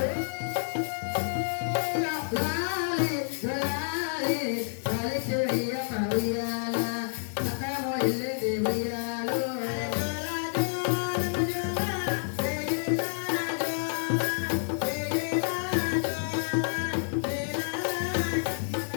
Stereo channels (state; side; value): silent; right; digital silence